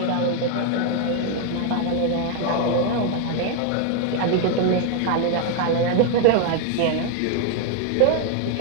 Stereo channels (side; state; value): both; different; correlation 0.01